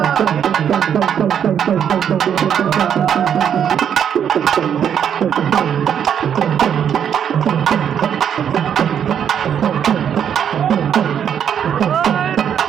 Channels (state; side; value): quieter; left; 8.7 dB